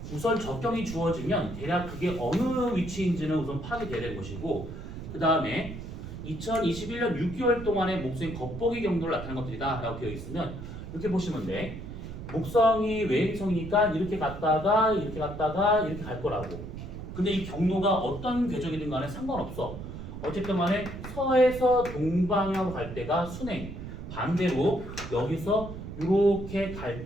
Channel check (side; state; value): right; noise; rumble, 9 dB below the sound